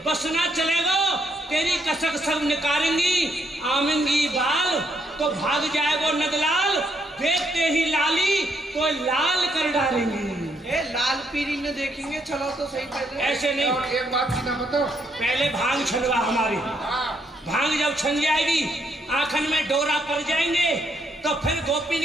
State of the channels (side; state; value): both; normal; correlation 0.74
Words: बसना चलेगा तेरी कसक सब निकालेंगी। आमेंगी बाल तो भाग जाएगो नदलाल, देखते ही लाली तो लाल कर डालेंगी। लाल पीरी में देखेंगे, चलो तो सही पहले। ऐसे नहीं, एक बात की ना बताओ, पहले भांग छलवा हमारी। भांग जब छन जाएगी, आंखन में डोरा पड़ जाएंगे तो फिर गोपिन